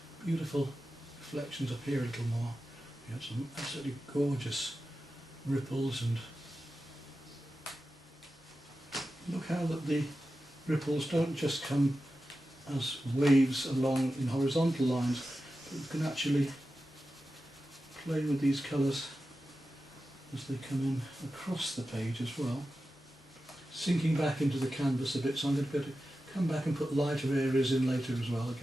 beautiful reflections up here a little more. We have some absolutely gorgeous ripples, and look how that the ripples don't just come as waves along in horizontal lines, but you can actually play with these colours as they come in across the page as well. Sinking back into the canvas a bit, so I'm going to go to come back and put lighter areas in later as well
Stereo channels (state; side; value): normal; both; correlation 0.92